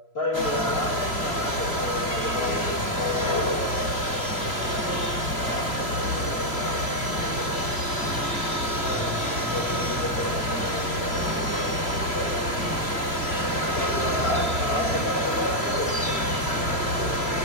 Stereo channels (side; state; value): right; late; 3.0 ms